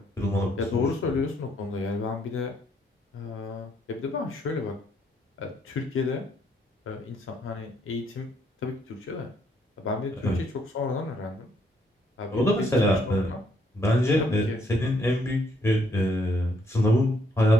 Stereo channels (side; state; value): both; normal; correlation 0.71